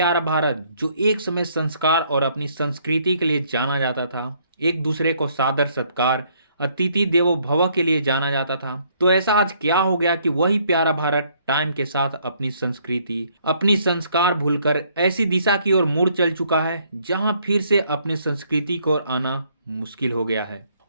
भारत, जो एक समय संस्कार और अपनी संस्कृति के लिए जाना जाता था, एक दूसरे को सादर सत्कार, अतिथि देवो भव के लिए जाना जाता था। तो ऐसा आज क्या हो गया कि वही प्यारा भारत टाइम के साथ अपनी संस्कृति, अपनी संस्कार भूलकर ऐसी दिशा की ओर मुड़ चल चुका है जहां फिर से अपने संस्कृति को आना मुश्किल हो गया है।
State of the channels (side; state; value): both; inverted; correlation -0.66